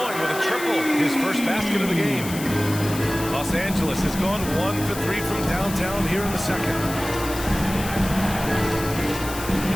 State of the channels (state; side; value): noise; left; hiss, 10 dB below the sound